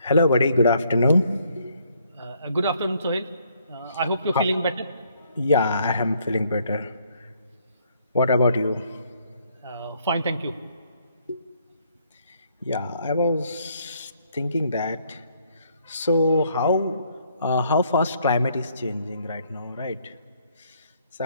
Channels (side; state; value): both; inverted; correlation -0.68